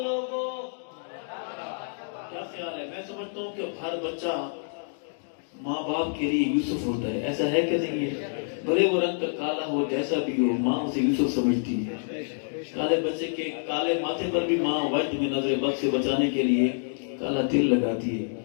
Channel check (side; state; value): right; silent; digital silence